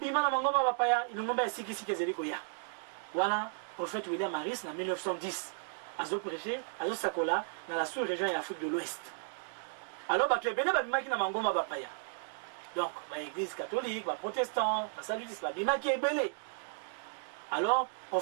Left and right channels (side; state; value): left; silent; digital silence